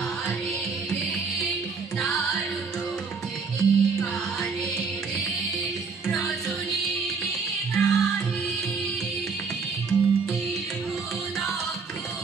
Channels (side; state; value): left; quieter; 5.0 dB